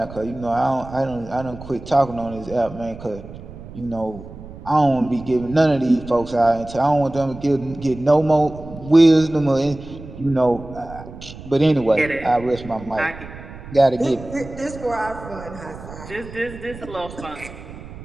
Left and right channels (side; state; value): right; noise; rumble, 15 dB below the sound